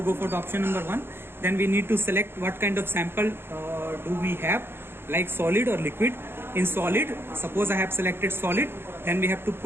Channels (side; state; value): left; late; 0.11 ms